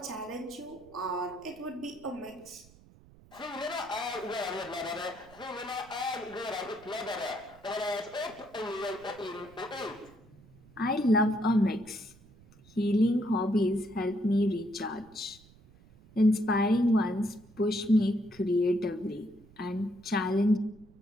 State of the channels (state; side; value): noise; right; rumble, 25 dB below the sound